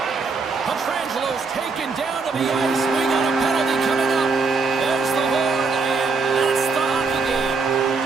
Petrangelo's taken down to the ice. We got a penalty coming up. There's the horn, and that's the hockey game.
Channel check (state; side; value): quieter; left; 4.4 dB